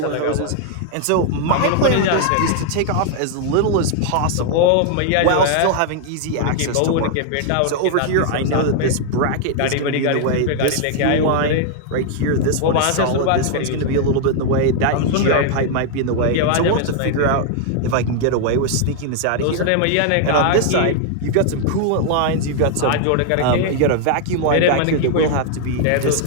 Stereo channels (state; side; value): different; both; correlation 0.00